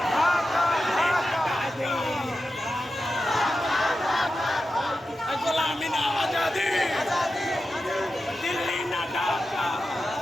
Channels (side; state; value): both; normal; correlation 0.91